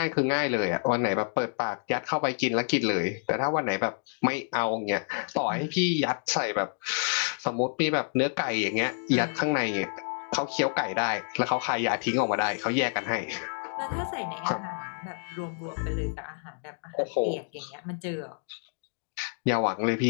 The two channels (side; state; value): right; silent; digital silence